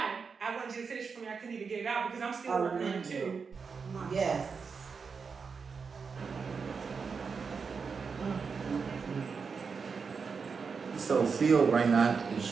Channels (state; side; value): quieter; left; 5.4 dB